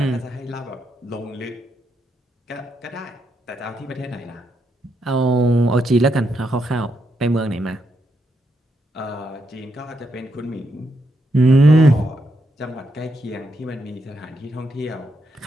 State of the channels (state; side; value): normal; both; correlation 0.80